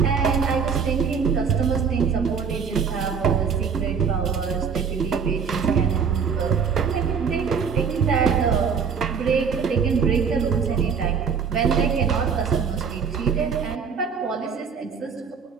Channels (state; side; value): quieter; left; 6.3 dB